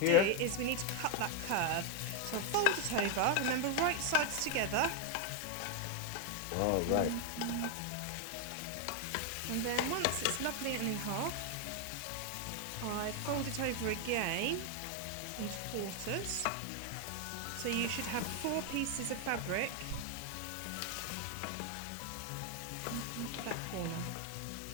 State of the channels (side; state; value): both; different; correlation 0.01